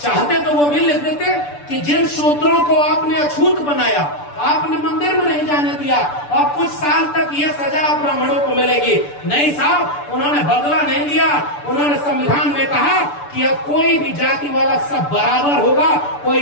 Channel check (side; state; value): right; late; 6.9 ms